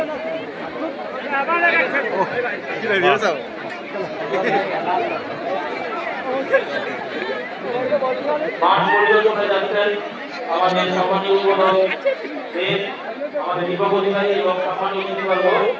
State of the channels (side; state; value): both; identical; correlation 1.00